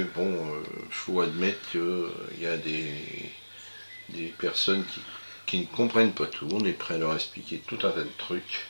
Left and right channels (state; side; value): inverted; both; correlation -1.00